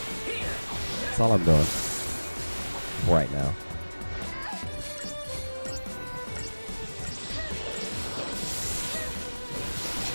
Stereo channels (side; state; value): both; inverted; correlation -1.00